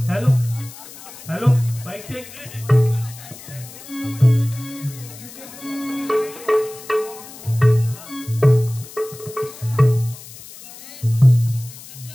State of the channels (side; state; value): left; noise; hiss, 17 dB below the sound